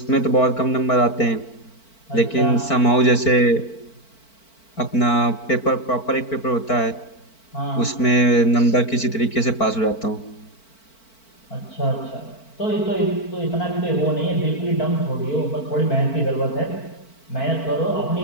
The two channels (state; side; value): late; right; 4.5 ms